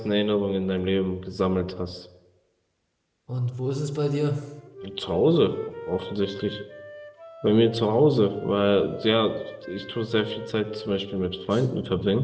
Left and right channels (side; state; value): both; identical; correlation 1.00